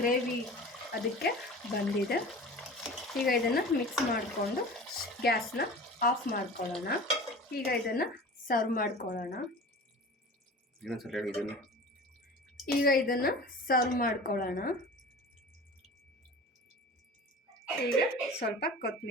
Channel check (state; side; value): normal; both; correlation 0.38